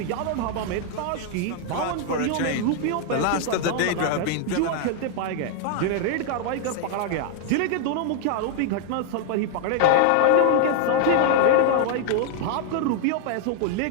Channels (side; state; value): both; different; correlation 0.00